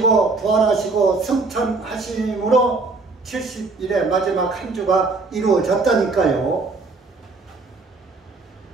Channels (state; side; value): quieter; left; 3.8 dB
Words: 부활하시고 승천하심으로 70일의 마지막 한 주가 이루어졌다니까요.